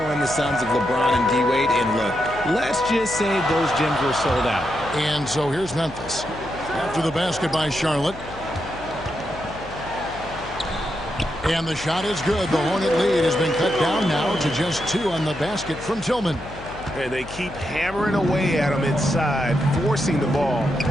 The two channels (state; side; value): noise; left; hum, 15 dB below the sound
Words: in the sons of LeBron and D-Wade, and look, let's just say those gyms were sold out. And so here's Memphis. After the basket by Charlotte. And the shot is good. The Hornet lead has been cut down now to just 2 on the basket from Tillman. And they keep hammering away at him inside, forcing the ball